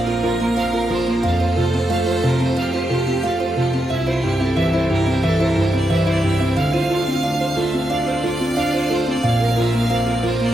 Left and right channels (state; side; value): normal; both; correlation 0.84